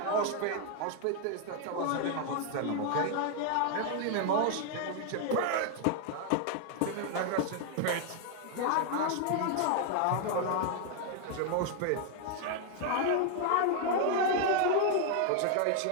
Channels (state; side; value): different; both; correlation 0.00